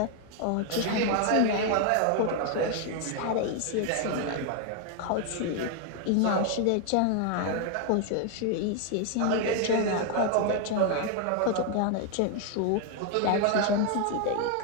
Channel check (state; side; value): different; both; correlation 0.00